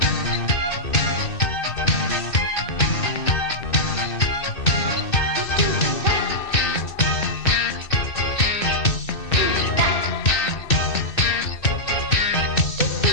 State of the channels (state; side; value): late; right; 2.6 ms